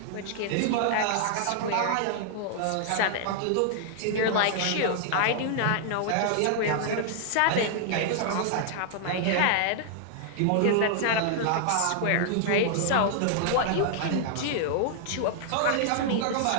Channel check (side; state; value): both; different; correlation -0.01